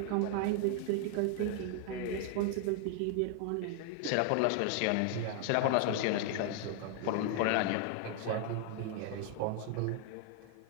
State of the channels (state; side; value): different; both; correlation 0.00